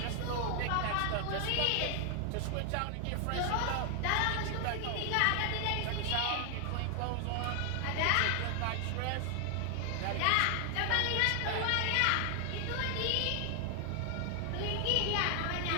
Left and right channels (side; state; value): both; different; correlation 0.00